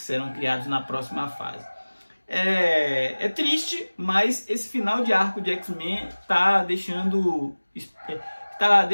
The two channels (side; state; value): both; inverted; correlation -1.00